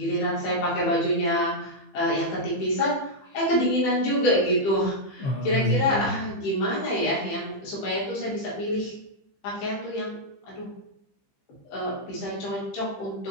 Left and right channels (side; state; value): right; late; 15 ms